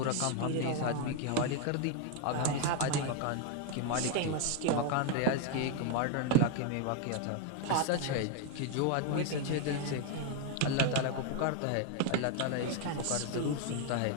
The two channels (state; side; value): different; both; correlation 0.01